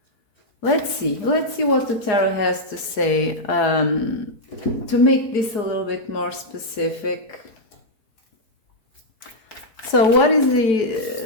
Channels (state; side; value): late; right; 4.4 ms